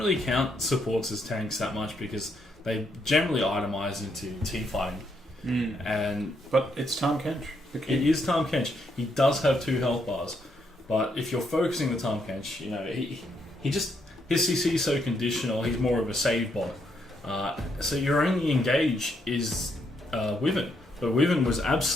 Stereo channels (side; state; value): both; normal; correlation 0.76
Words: count supports as tanks that much because they generally itemize into team fighting. But it's Tom Kench. It is Tom Kench. He does have 2 health bars, but if you're focusing the Tom Kench, he just. His CC is so conditional, he's more of a save bot. So your only engage is Wyvern. But Wyvern was